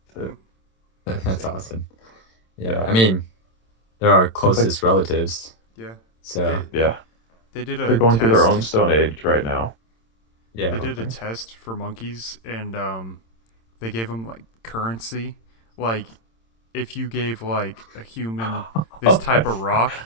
Hmm. To, That's awesome. Yeah. yeah, I mean, they're our it's like closest relatives. Yeah. So They yeah, they did they're a going through their own test. stone age right now. I yeah. They don't did a think. test for monkeys, and they gave them like currency. Like if you gave like a human this type of rock,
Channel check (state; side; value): late; right; 26 ms